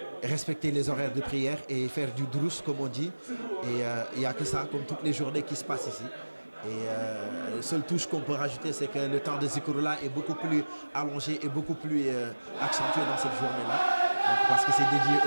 respecter les horaires de prière et faire du drous comme on dit. Et il n'y a que ça, comme toutes les journées qui se passent ici. Et la seule touche qu'on peut rajouter, c'est que le temps de Zikroulah est beaucoup plus allongé et beaucoup plus accentué dans cette journée-là. Parce que c'est dédié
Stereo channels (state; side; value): inverted; both; correlation -1.00